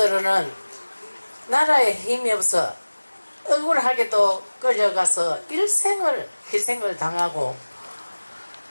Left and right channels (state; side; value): inverted; both; correlation -1.00